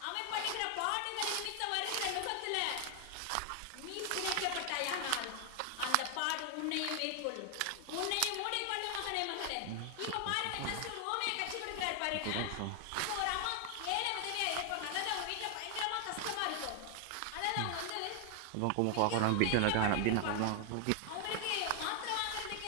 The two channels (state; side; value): different; both; correlation 0.00